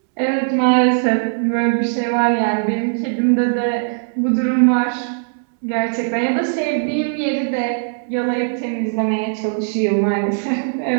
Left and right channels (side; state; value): left; silent; digital silence